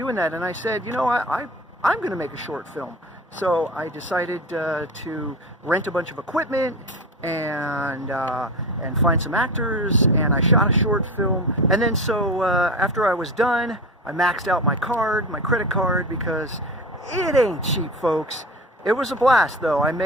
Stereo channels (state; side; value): normal; both; correlation 0.28